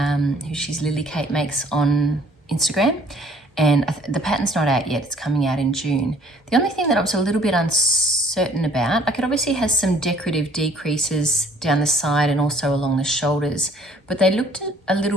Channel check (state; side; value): normal; both; correlation 0.57